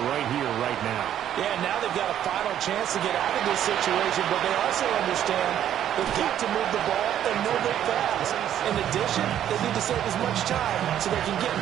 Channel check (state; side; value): quieter; left; 10.7 dB